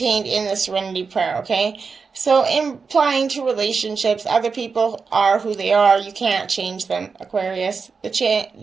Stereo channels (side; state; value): left; quieter; 5.1 dB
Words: in the Serenity Prayer, okay? So, implying to relationships, other people are who they are. You can't change them, Aquarius. The